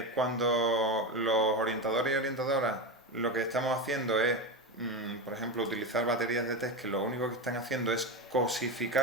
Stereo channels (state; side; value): normal; both; correlation 0.18